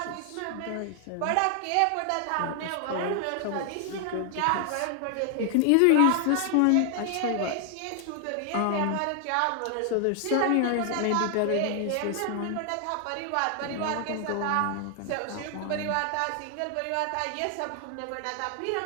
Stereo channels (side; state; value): both; different; correlation 0.00